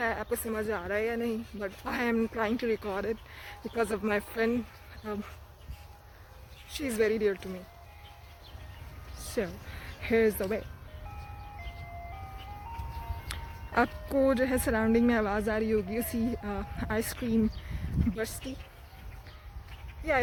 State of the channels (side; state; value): both; identical; correlation 1.00